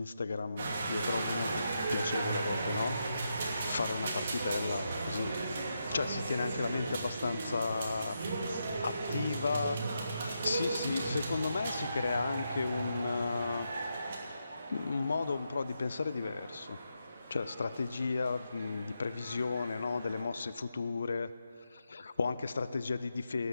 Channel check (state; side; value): inverted; both; correlation -0.84